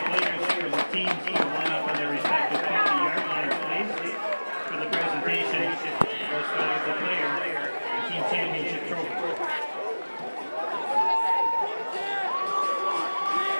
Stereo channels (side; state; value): both; inverted; correlation -1.00